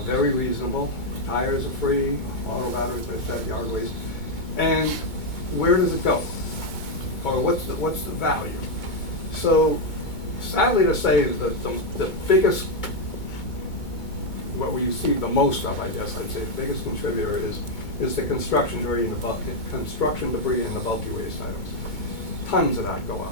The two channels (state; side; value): late; right; 2.2 ms